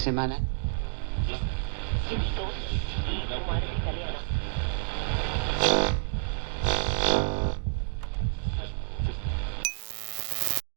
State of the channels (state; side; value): silent; left; digital silence